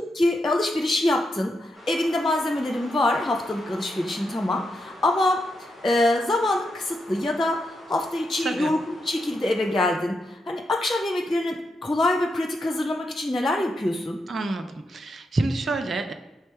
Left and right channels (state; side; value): normal; both; correlation 0.84